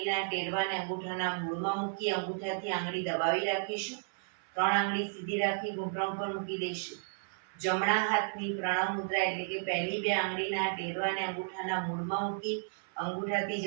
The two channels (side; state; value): left; silent; 56 dB below the other